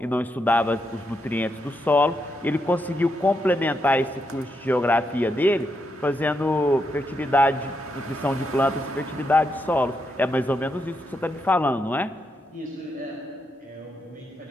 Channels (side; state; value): both; normal; correlation 0.81